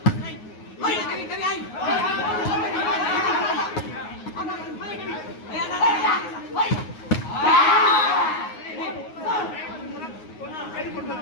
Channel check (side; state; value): right; late; 9.5 ms